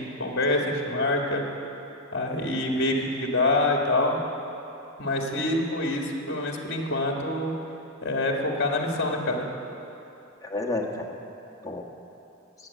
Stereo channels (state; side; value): normal; both; correlation -0.02